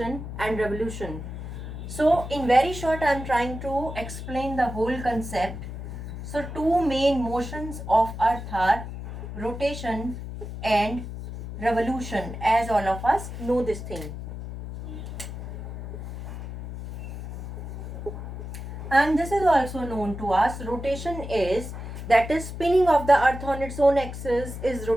and revolution. So in very short, I am trying to explain the whole concept. So two main motions of Earth are rotation and revolution, as all of us know this thing. And this is also known to us. Rotation is, that is spinning of the Earth on its own axis is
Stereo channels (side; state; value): left; noise; hum, 8 dB below the sound